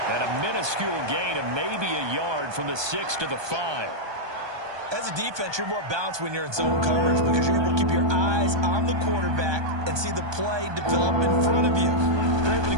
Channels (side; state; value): left; late; 1.2 ms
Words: And a minuscule gain of maybe a yard from the 6 to the 5. As a defense, you're more balanced when you're in zone coverage because you're able to keep your eyes on the quarterback and see the play develop in front of you. They're able to